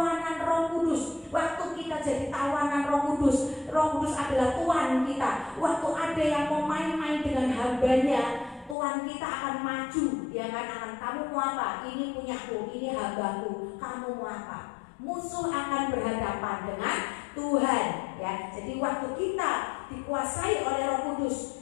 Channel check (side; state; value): right; drops out; at 8.8 s